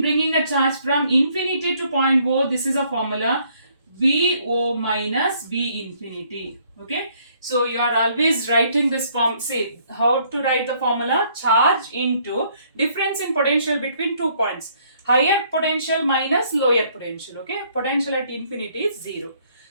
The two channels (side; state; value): both; inverted; correlation -0.65